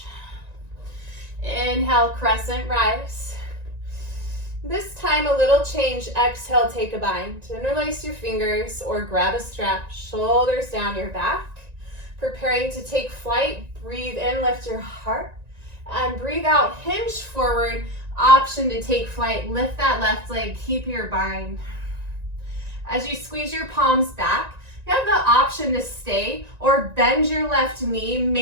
Inhale, crescent rise. This time a little change, exhale, take a bind. Interlace your fingers or grab a strap, shoulders down your back. Preparing to take flight, breathe in, lift your heart. And breathe out, hinge forward, option to take flight. Lift that left leg, keep your bind. As you squeeze your palms back, you have the option to stay or bend your left knee,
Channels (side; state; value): left; late; 1.9 ms